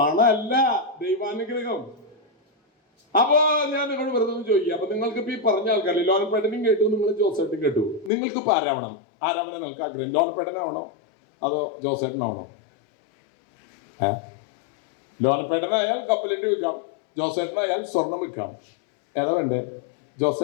ദൈവാനുഗ്രഹം. അപ്പൊ ഞാൻ നിങ്ങൾ വെറുതെ ഒന്ന് ചോദിക്കുക. അപ്പൊ നിങ്ങൾക്ക് ഇപ്പൊ ഈ പറഞ്ഞ ആൾക്കാരല്ലേ, ലോനപ്പേട്ടനും കേട്ടു, നിങ്ങൾ ജോസേട്ടനും കേട്ടു, നിങ്ങൾക്ക് ഇപ്പൊ ആരാവണം? ആരാവണം നിങ്ങൾക്ക് ആഗ്രഹം? ലോനപ്പേട്ടനാവണോ അതോ ജോസേട്ടനാവണോ? ലോനപ്പേട്ടനായാൽ കപ്പലിന്റെ വിൽക്കാം, ജോസേട്ടനായാൽ സ്വർണം വിൽക്കാം. ഏതാ വേണ്ടേ?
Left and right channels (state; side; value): drops out; right; at 8.1 s